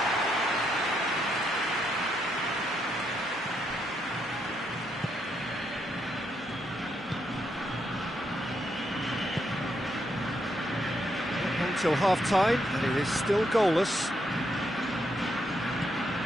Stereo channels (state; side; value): normal; both; correlation 0.78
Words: Until half-time, and it is still goalless.